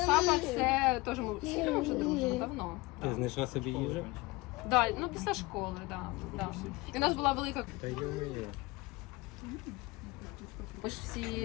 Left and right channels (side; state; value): right; quieter; 22.7 dB